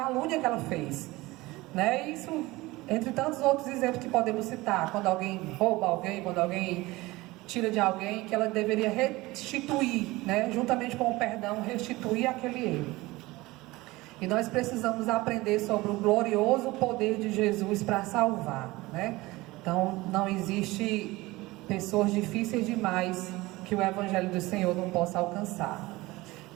que ela fez. Né? Isso, entre tantos outros exemplos que podemos citar, quando alguém rouba alguém, quando alguém tira de alguém, que ela deveria restituir, né? Juntamente com o perdão, restituir aquele erro. E nós precisamos aprender sobre o glorioso poder de Jesus para salvar, né? Então, não existe pessoas difíceis demais que o Evangelho do Senhor não possa alcançar.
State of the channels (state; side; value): quieter; left; 20.4 dB